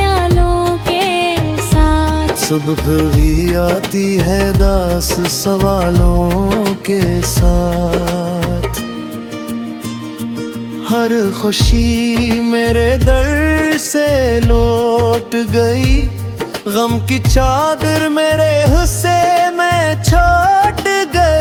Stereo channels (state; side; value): identical; both; correlation 1.00